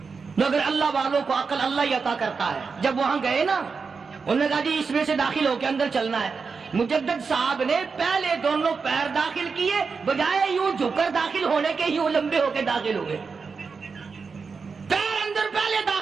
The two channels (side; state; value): left; quieter; 5.1 dB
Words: مگر اللہ والوں کو عقل اللہ ہی عطا کرتا ہے. جب وہاں گئے نا, انہوں نے کہا جی اس میں سے داخل ہو کے اندر چلنا ہے. مجدد صاحب نے پہلے دونوں پیر داخل کیے, بجائے یوں جھک کر داخل ہونے کے یوں لمبے ہو کے داخل ہوئے. پیر اندر پہلے